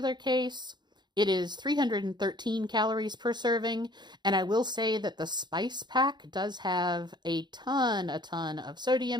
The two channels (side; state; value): left; late; 0.21 ms